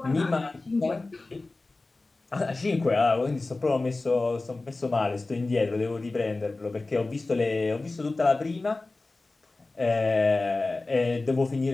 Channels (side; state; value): right; quieter; 3.3 dB